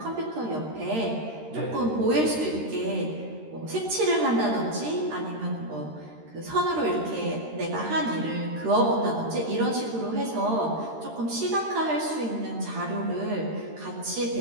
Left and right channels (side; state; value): left; late; 13 ms